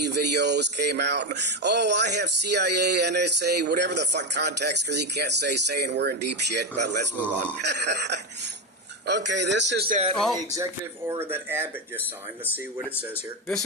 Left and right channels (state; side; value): normal; both; correlation 0.12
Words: videos came out. Oh, I have CIA, NSA, whatever the fuck contacts, because he can't saying we're in deep shit, but let's move on. Okay, this is the executive order that Abbott just signed. Let's see what it says here. This